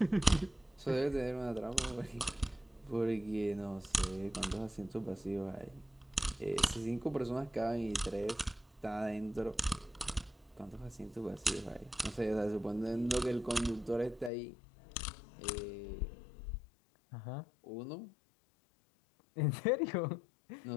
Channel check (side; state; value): right; drops out; at 14.3 s